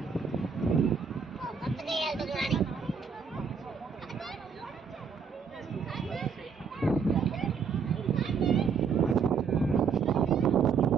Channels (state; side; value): quieter; left; 6.0 dB